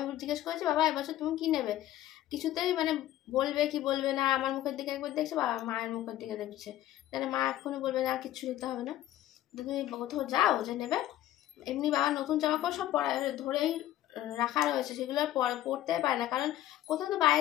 জিজ্ঞেস করেছি বাবা এবছর তুমি কি নেবে, কিছুতেই মানে বলবে কি বলবে না। আমার মুখের দিকে একবার দেখছে, বাবা মায়ের মুখের দিকে দেখছে, তাহলে মা এক্ষুনি বলবে না কিছু নিতে হবে না, তুমি কোথাও যাও যে নেবে। এমনি বাবা নতুন জামা কাপড় সব ধরেই রাখা রয়েছে, সেগুলো পরতে পারে না, কারণ কোথাও তো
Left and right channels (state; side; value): quieter; right; 13.7 dB